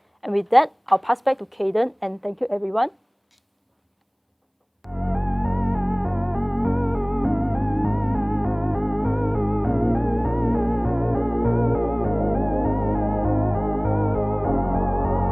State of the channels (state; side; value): identical; both; correlation 1.00